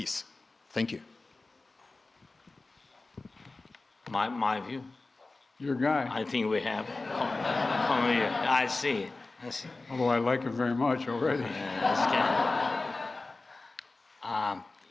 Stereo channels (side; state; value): right; quieter; 3.4 dB